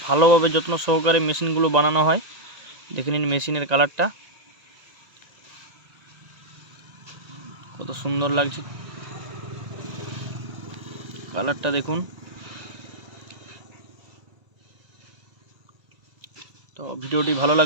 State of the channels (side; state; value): left; late; 1.9 ms